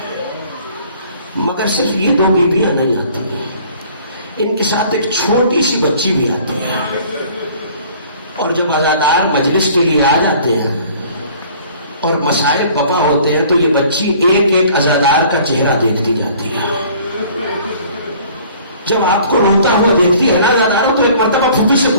مگر صرف یہ دو بیویاں نہیں آتی ہیں, ان کے ساتھ ایک چھوٹی سی بچی بھی آتی ہے. اور جب عزادار مجلس کے لیے آ جاتے ہیں اور مسائل بپا ہوتے ہیں تو یہ بچی ایک ایک عزادار کا چہرہ دیکھتی جاتی ہے. جب آپ کو روتا ہوا دیکھتی ہے نا عزاداروں تو ایک مرتبہ پھوپھی سے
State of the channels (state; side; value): inverted; both; correlation -0.52